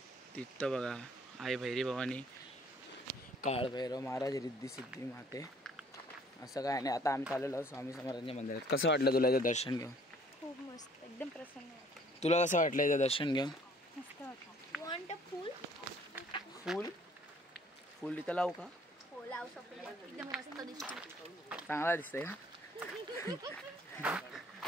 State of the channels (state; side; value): normal; both; correlation 0.58